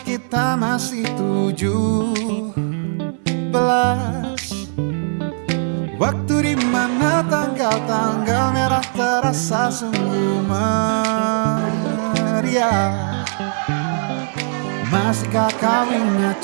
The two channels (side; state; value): left; silent; 56 dB below the other